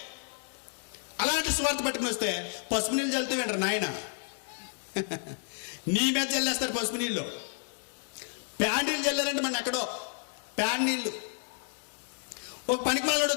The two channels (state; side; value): silent; right; 57 dB below the other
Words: అలాంటి సువార్త పట్టుకుని వస్తే పసుపు నీళ్ళు చల్లుతూ వింటారు నాయన. నీ మీద చల్లేస్తారు పసుపు నీళ్ళు. ప్యాన్ నీళ్ళు చల్లారంటే మన ఎక్కడో ప్యాన్ నీళ్ళు. ఒక పనికి మాలోడు